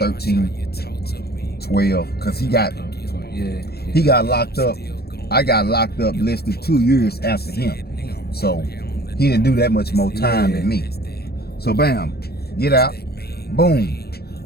12, because he got locked up. I got locked up less than 2 years after him. So he didn't do that much more time than me. So bam, get out, boom.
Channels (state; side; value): late; right; 0.46 ms